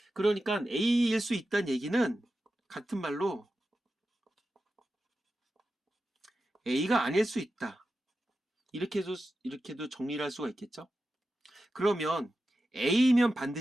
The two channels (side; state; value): both; normal; correlation 0.92